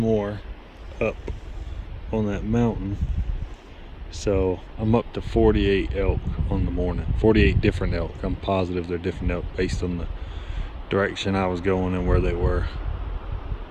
up on that mountain. So I'm up to 48 elk on the morning. 48 different elk. I'm positive they're different elk based on the direction I was going and where they were.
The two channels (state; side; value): identical; both; correlation 1.00